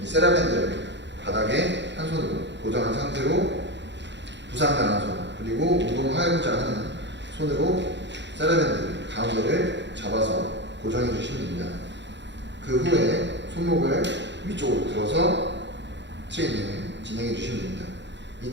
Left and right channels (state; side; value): late; left; 0.52 ms